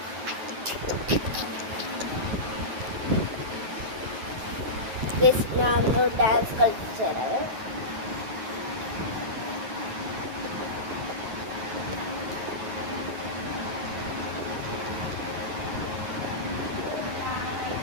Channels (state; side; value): late; left; 9.3 ms